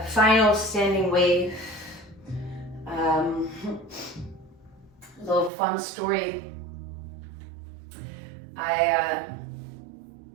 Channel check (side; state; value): left; drops out; at 5.5 s